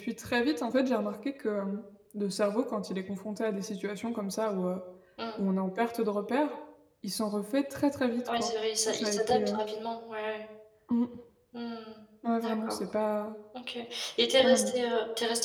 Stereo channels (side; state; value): both; identical; correlation 1.00